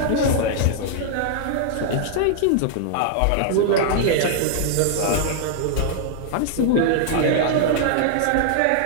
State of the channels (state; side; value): different; both; correlation -0.01